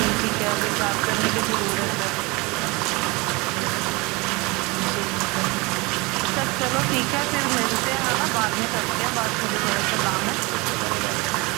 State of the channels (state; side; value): quieter; left; 25.5 dB